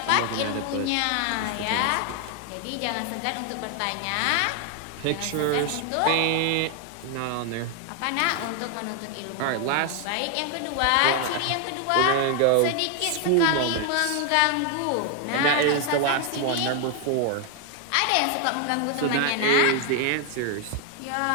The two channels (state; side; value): different; both; correlation 0.00